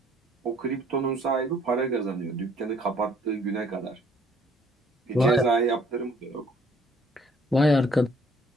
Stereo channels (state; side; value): normal; both; correlation 0.60